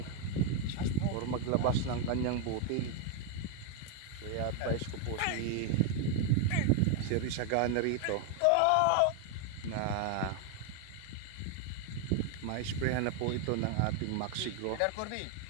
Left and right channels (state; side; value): different; both; correlation 0.01